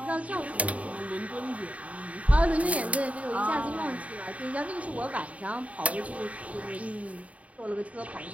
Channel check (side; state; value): left; late; 0.067 ms